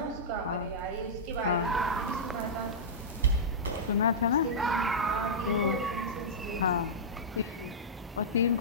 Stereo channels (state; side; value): normal; both; correlation -0.13